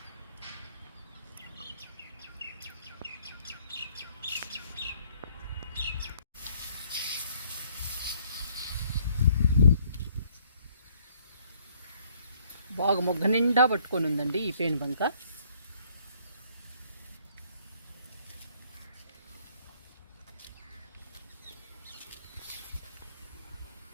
బాగా మొగ్గ నిండా పట్టుకొని ఉందండి ఈ పేను బంక.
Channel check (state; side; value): inverted; both; correlation -0.63